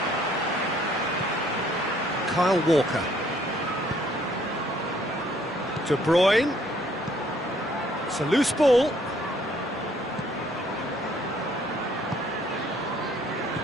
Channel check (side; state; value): both; normal; correlation 0.63